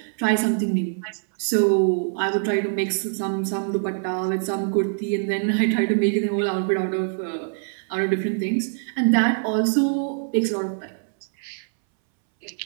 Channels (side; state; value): left; silent; 63 dB below the other